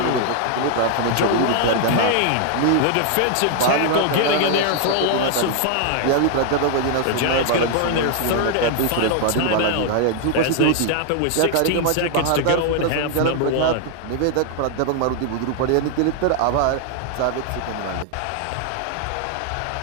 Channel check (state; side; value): different; both; correlation 0.00